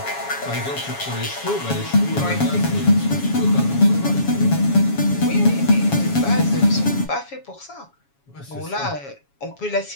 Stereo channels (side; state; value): right; late; 7.2 ms